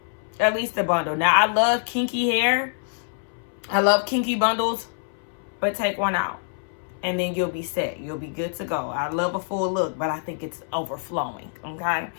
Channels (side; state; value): right; silent; 62 dB below the other